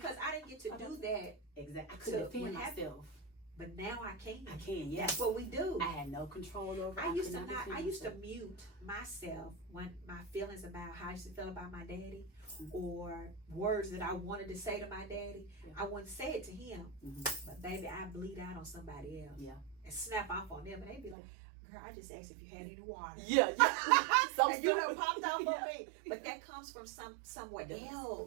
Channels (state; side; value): drops out; left; at 21.2 s